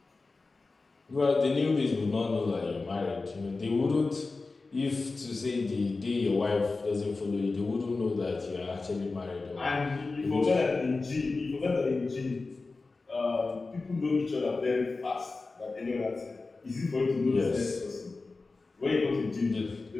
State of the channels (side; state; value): right; quieter; 3.7 dB